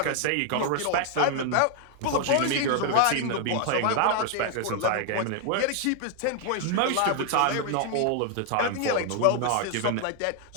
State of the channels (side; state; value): both; different; correlation 0.00